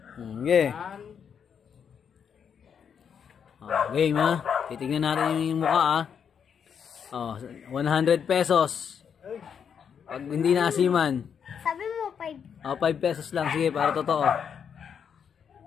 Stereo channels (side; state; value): right; quieter; 7.4 dB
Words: Okay. Game ha. Titignan natin yung mukha ha. Oh, 100 pesos. Pag hindi naasiman. Sabi mo 5. Oh, 5 pesos lang. Sige, para totoo.